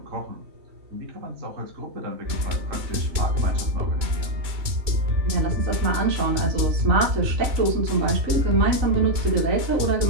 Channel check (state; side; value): late; left; 3.0 ms